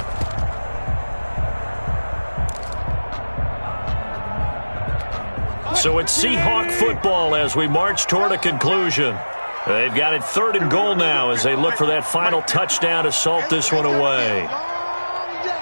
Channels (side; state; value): both; inverted; correlation -1.00